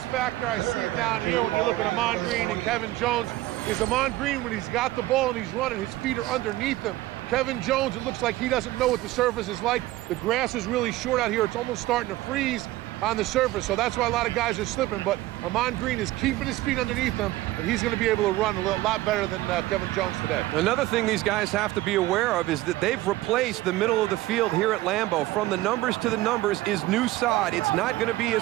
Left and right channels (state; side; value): quieter; left; 17.1 dB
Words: factor I see down here when you look at Ahman Green and Kevin Jones is Ahman Green, when he's got the ball and he's running, his feet are underneath him. Kevin Jones, it looks like he doesn't know what the surface is like. The grass is really short out here. It's almost starting to freeze on the surface, so that's why a lot of guys are slipping. But Ahman Green is keeping his feet underneath him, and he's going to be able to run a lot better than Kevin Jones today. Another thing these guys have to be aware of is that they've replaced the middle of the field here at Lambeau. From the numbers to the numbers is new sod. It's not going to be